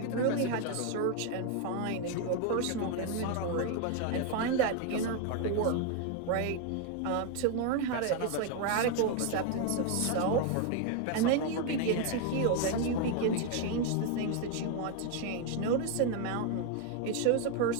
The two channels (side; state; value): both; different; correlation 0.01